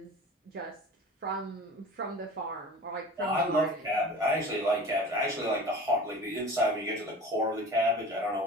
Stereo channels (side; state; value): both; normal; correlation 0.39